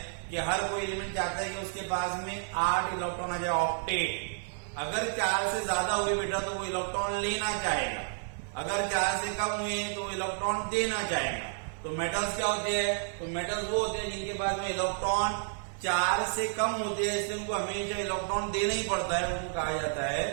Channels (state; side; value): silent; left; 57 dB below the other